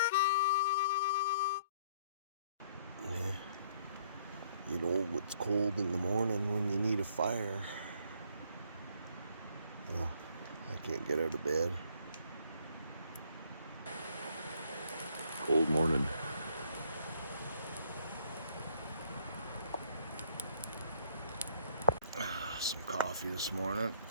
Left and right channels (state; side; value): inverted; both; correlation -0.64